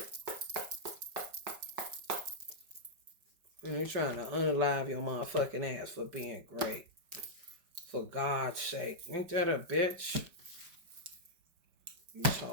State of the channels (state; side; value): late; left; 5.2 ms